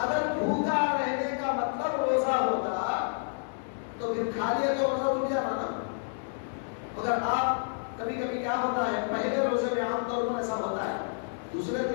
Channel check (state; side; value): silent; right; 58 dB below the other